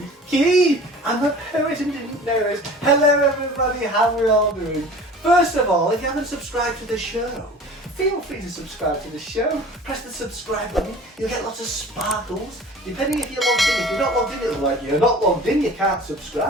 I'm a poet and didn't know it. Hello everybody, how are we all doing? First of all, if you haven't subscribed to the show, feel free to subscribe to the show. Press the subscribe button, you'll get lots of sparkles, depending if you're logged in. If you're not logged in, it'll be like, you're not logged in, you can't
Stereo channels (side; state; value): both; normal; correlation 0.43